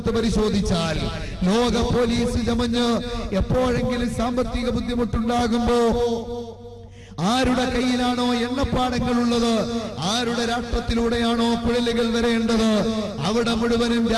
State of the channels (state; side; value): identical; both; correlation 1.00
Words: പരിശോധിച്ചാൽ ലോക പോലീസ് ചമഞ്ഞ് എപ്പോഴെങ്കിലും സാമ്പത്തിക ബുദ്ധിമുട്ടുണ്ടാകുമ്പോ ആരുടെ കയ്യിലാണോ എണ്ണപ്പാടങ്ങളുള്ളത്, ആരുടെ രാഷ്ട്രത്തിലൂടെയാണോ കുഴലുകൾ വരേണ്ടത്, അവിടെ മുഴുവനും